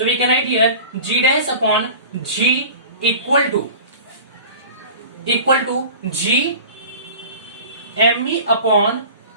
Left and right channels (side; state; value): both; inverted; correlation -0.39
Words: we can write here G dash upon G equal to G M E upon